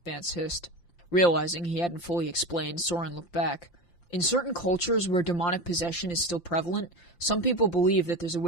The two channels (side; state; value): right; late; 5.8 ms